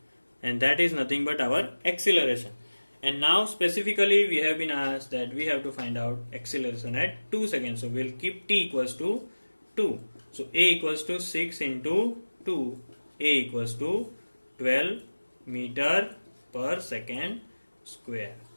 and that is nothing but our acceleration. And now specifically we have been asked that we have to find out acceleration at 2 seconds, so we will keep t equals to 2. So a equals to 6 into 2, a equals to 12 meter per second square.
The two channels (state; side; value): inverted; both; correlation -1.00